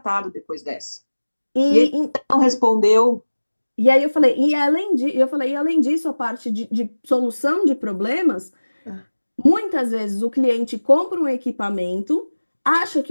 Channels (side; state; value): both; inverted; correlation -1.00